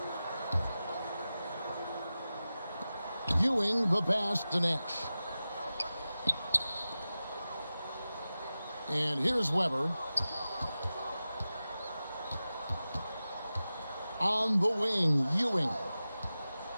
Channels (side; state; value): both; inverted; correlation -0.94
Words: Ewing the pass to Nash. And here's Weber. On the wing, Ewing.